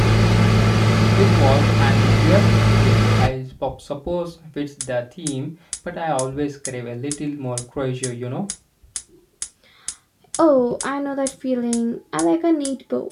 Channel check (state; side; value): identical; both; correlation 1.00